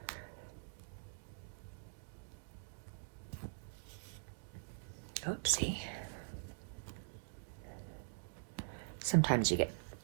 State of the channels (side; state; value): left; silent; digital silence